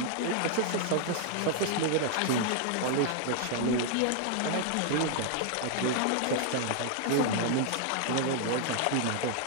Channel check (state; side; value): different; both; correlation 0.00